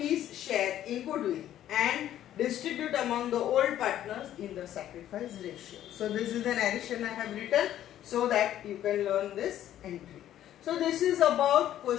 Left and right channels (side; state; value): right; quieter; 11.9 dB